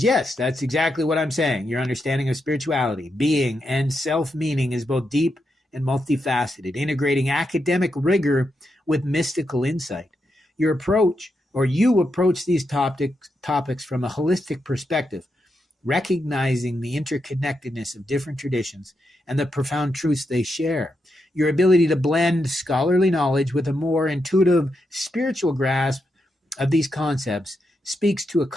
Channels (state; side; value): normal; both; correlation 0.84